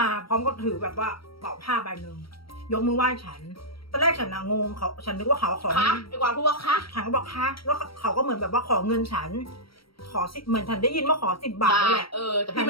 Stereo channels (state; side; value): late; right; 0.75 ms